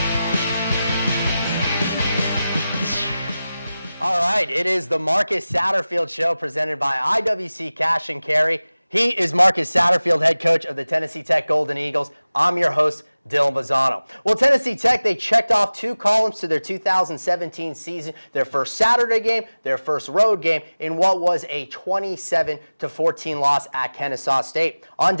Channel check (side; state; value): both; inverted; correlation -0.97